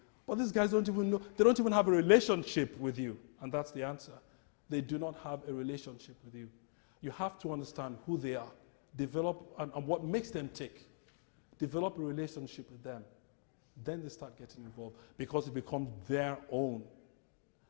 but these guys don't even know. They don't even have a relationship with you, and that's the answer. They do not have a relationship with you. You have to understand who they are, develop and what makes them tick. Develop a relationship with them. Then they start getting involved because it becomes their own.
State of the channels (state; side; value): silent; right; digital silence